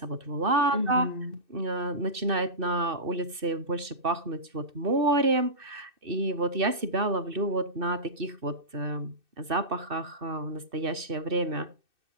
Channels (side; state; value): left; late; 2.6 ms